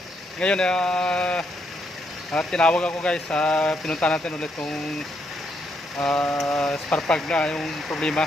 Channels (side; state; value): both; normal; correlation 0.76